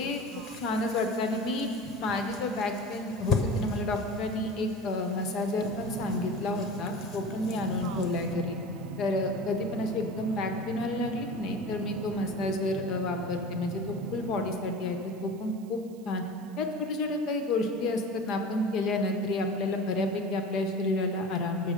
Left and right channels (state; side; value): noise; right; hiss, 26 dB below the sound